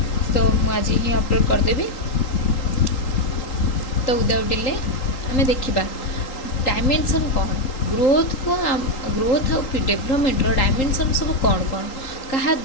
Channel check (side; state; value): right; late; 3.8 ms